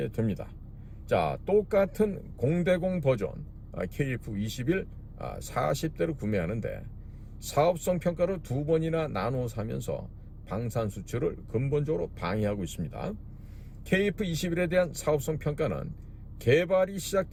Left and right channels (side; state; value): both; identical; correlation 1.00